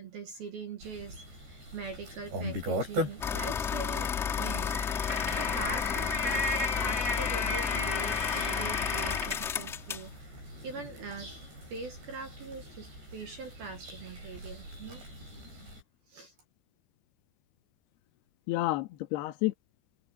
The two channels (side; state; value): right; quieter; 4.3 dB